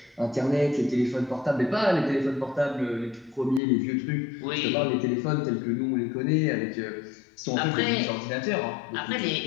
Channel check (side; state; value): right; drops out; at 3.6 s